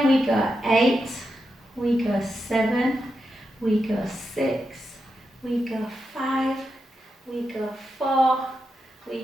we go 8, we go 7, we go 6, we go 5, we go 4,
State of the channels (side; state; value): both; normal; correlation 0.87